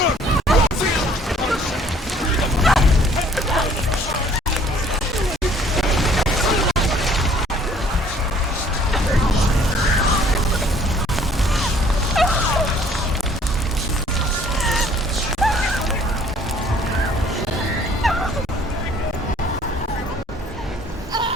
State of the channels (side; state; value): both; normal; correlation 0.57